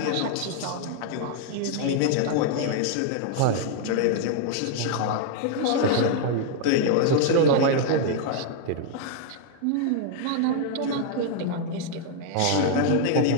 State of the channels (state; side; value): different; both; correlation -0.01